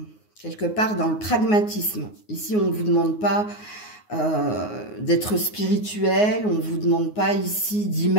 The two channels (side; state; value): right; late; 9.5 ms